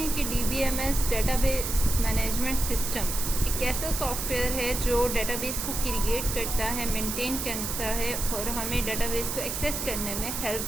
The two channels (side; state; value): right; noise; hiss, 3 dB below the sound